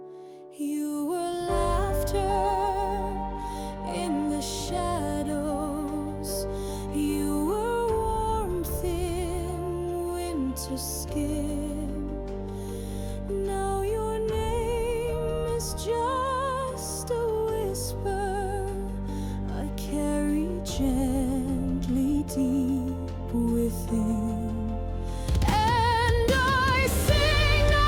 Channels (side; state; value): both; identical; correlation 1.00